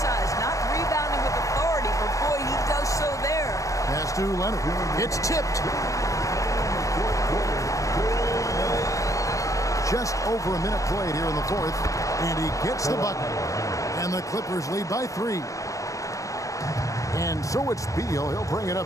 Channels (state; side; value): late; right; 0.16 ms